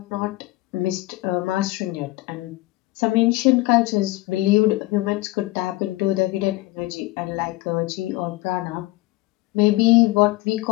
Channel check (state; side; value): quieter; right; 19.7 dB